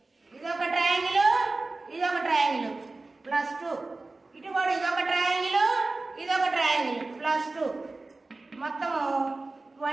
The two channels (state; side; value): quieter; left; 3.3 dB